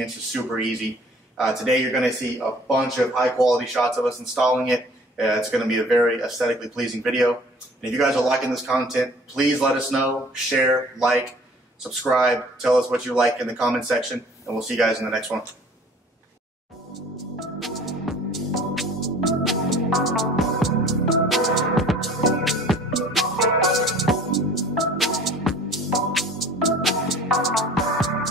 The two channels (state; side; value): normal; both; correlation 0.50